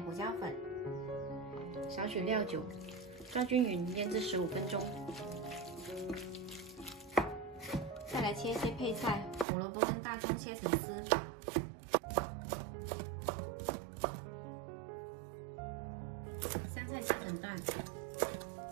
胡椒粉，少许料酒，抓均匀，腌制15分钟。再来切一些配菜，胡萝卜跟大葱切成丝，香菜切成段。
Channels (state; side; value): drops out; left; at 9.5 s